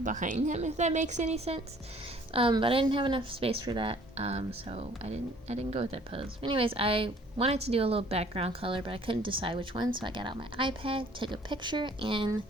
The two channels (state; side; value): normal; both; correlation 0.56